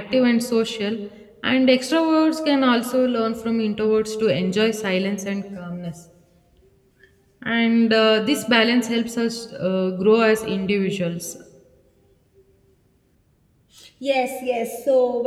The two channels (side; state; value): both; identical; correlation 1.00